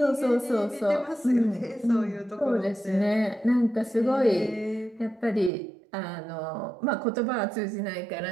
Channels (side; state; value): left; drops out; at 5.5 s